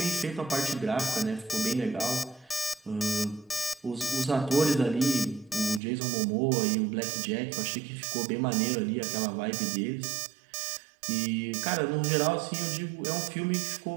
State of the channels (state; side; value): drops out; left; at 5.8 s